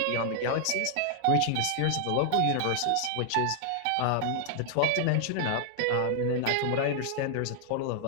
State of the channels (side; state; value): both; different; correlation 0.00